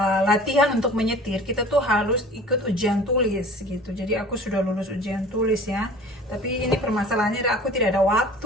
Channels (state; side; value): normal; both; correlation 0.44